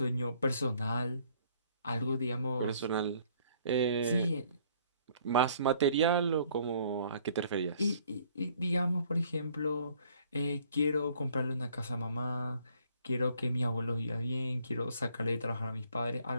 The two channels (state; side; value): inverted; both; correlation -0.61